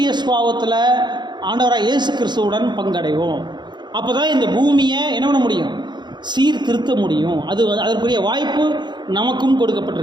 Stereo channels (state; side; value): late; left; 0.21 ms